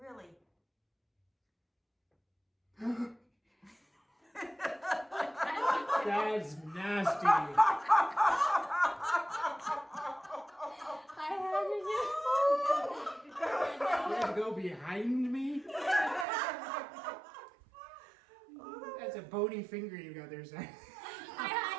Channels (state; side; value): drops out; left; at 16.2 s